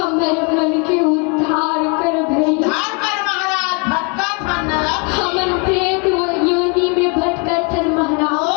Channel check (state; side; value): quieter; right; 34.2 dB